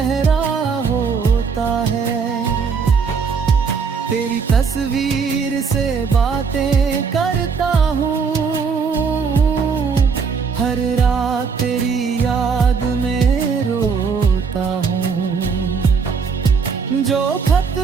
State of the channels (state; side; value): quieter; left; 5.6 dB